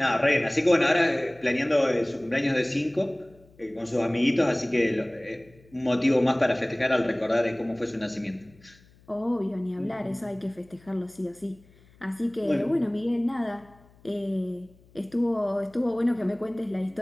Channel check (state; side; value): noise; left; hum, 28 dB below the sound